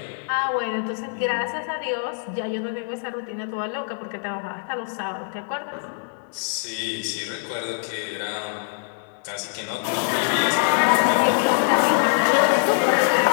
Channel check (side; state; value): right; silent; 63 dB below the other